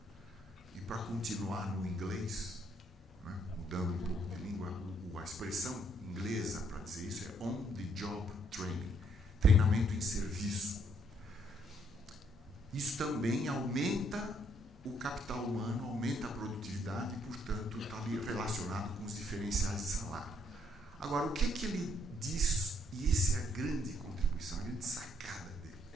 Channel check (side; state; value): both; normal; correlation 0.69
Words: E para continuar no inglês, né, mudando um pouco de língua, a expressão inglesa para dizer isso é on the job training, treinamento em serviço. Isso também aumenta o capital humano, aumenta a produtividade e, portanto, está ali relacionado com os diferenciais de salário. Agora, o que ele diz, e essa é a grande contribuição, a grande sacada